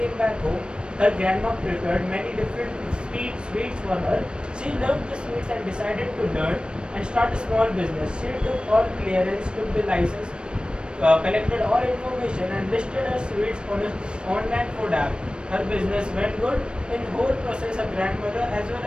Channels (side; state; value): left; late; 0.054 ms